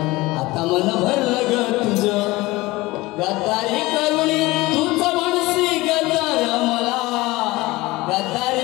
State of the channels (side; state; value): right; quieter; 20.5 dB